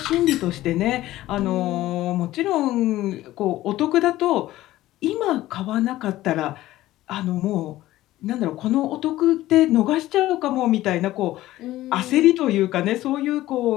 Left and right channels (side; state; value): right; quieter; 15.7 dB